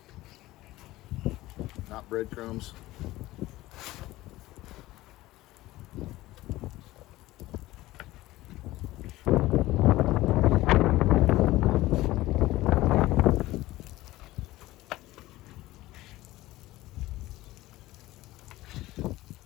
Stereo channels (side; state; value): right; quieter; 17.4 dB